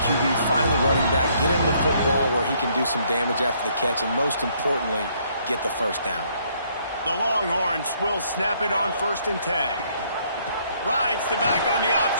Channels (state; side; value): inverted; both; correlation -0.67